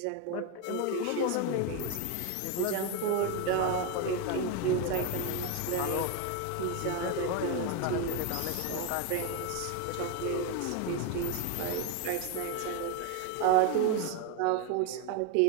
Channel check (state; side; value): different; both; correlation 0.02